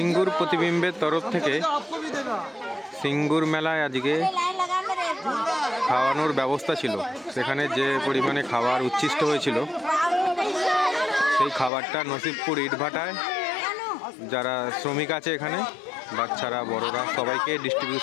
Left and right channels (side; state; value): right; drops out; at 11.7 s